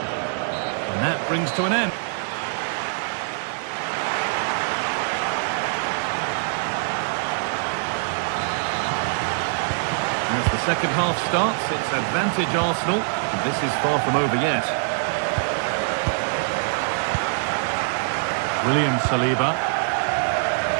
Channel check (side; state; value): left; silent; digital silence